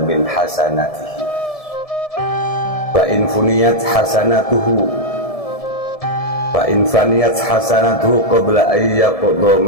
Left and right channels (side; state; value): right; late; 1.7 ms